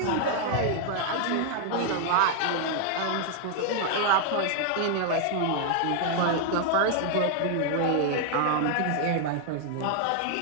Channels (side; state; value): both; different; correlation 0.00